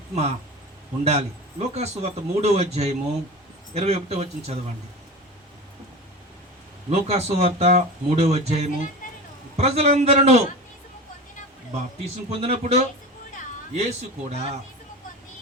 ఉండాలి. లూకా సువార్త 3వ అధ్యాయము 21వ వచనం చదవండి. లూకా సువార్త 3వ అధ్యాయము. ప్రజలందరూ బాప్తిసం పొందినప్పుడు యేసు కూడా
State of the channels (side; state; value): both; normal; correlation 0.31